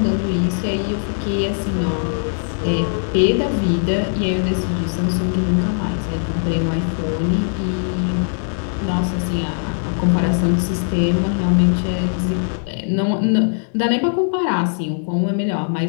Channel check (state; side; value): silent; right; 66 dB below the other